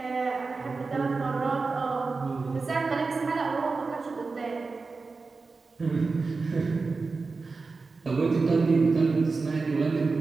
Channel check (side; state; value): left; quieter; 4.2 dB